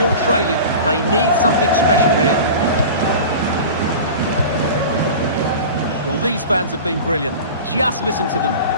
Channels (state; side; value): inverted; both; correlation -0.34